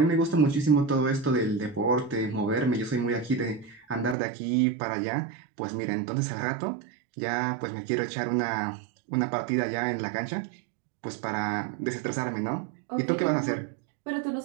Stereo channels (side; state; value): left; drops out; at 4.2 s